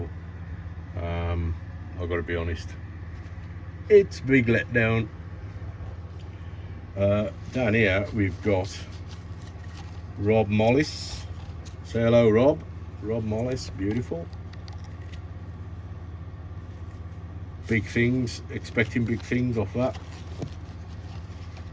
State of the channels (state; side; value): identical; both; correlation 1.00